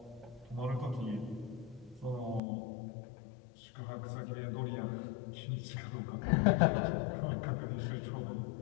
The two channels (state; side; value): drops out; right; at 2.4 s